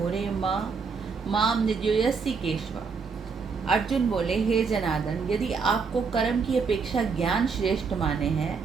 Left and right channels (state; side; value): quieter; left; 5.2 dB